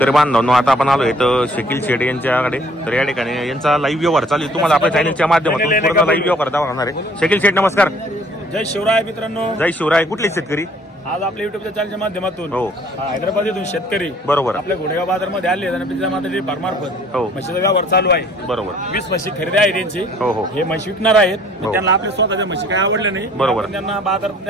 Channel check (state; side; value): normal; both; correlation 0.57